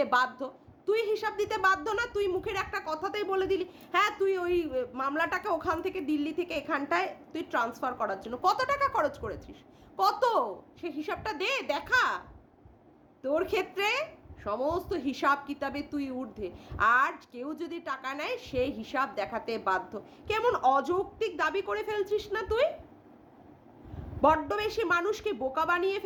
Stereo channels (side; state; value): both; identical; correlation 1.00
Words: বাধ্য, তুই হিসাব দিতে বাধ্য না? তুই মুখের একটা কথাতেই বলে দিলি হ্যাঁ তুই ওই মামলাটাকে ওখান থেকে দিল্লি থেকে এখানটায় তুই ট্রান্সফার করার জন্য কত টাকা খরচ করেছিস, কত? সে হিসাবটা দে, দেখা। তোর ক্ষেত্রে সমস্ত হিসাব কিতাবে তুই ঊর্ধ্বে, আর কেউ যদি টাকা নেয় সে হিসাব দেখাতে বাধ্য। কেমন অযৌক্তিক দাবি করে ফেলছিস না তুই? বড্ড বেশি মানুষকে বোকা বানিয়ে